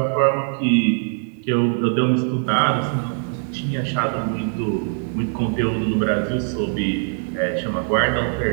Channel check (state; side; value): silent; left; 60 dB below the other